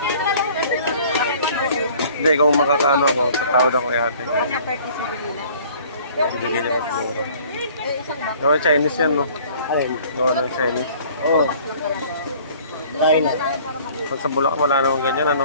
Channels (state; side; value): inverted; both; correlation -0.52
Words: Hindi, kung makakaano ako, tatawad ako kay ate. Bigyan niya mas mura. Gawa Chinese yan, no? Alin? Gawa ng Chinese. Oo. Line. Pag sa Bulacan, wala namang ganyan, ano?